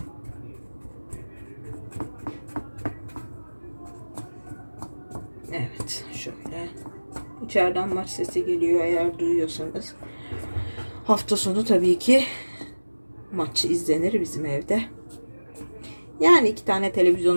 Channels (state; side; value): inverted; both; correlation -1.00